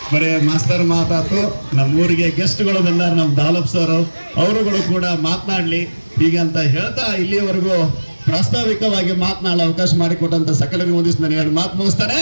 ಬರೇ ಮಾಸ್ತರ್ ಮಾತಾತು, ನಮ್ಮೂರಿಗೆ ಗೆಸ್ಟ್ಗಳು ಬಂದಾರ, ನಮ್ಮ ದಾಲಪ್ ಸರ್, ಅವರುಗಳು ಕೂಡ ಮಾತನಾಡ್ಲಿ ಹೀಗಂತ ಹೇಳ್ತಾ ಇಲ್ಲಿಯವರೆಗೂ ಪ್ರಾಸ್ತಾವಿಕವಾಗಿ ಮಾತನಾಡಲು ಅವಕಾಶ ಮಾಡಿಕೊಟ್ಟಂತ ಸಕಲರಿಗೆ ಒಂದಿಷ್ಟು ನಾನು ಎರಡು ಮಾತು ಮುಗಿಸ್ತಾನೆ.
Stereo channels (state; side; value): inverted; both; correlation -1.00